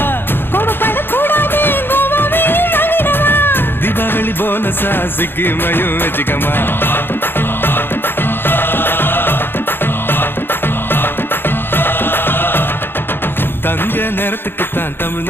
கோபப்பட கூடாது கோவாவே வாங்கிடவா தீபாவளி போனஸா சிக்கிமையும் வச்சுக்கமா தங்க நேரத்துக்குத்தான்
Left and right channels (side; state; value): right; late; 0.10 ms